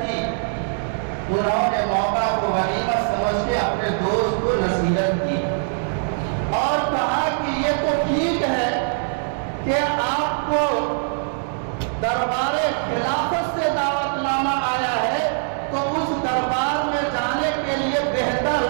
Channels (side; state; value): left; silent; 64 dB below the other